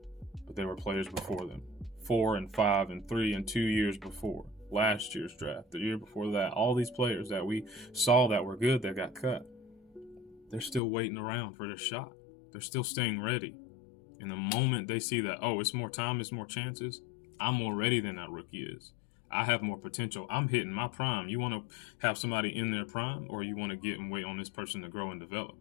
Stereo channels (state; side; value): drops out; right; at 10.8 s